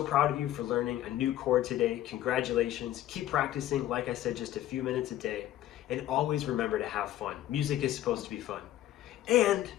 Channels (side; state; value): right; quieter; 13.3 dB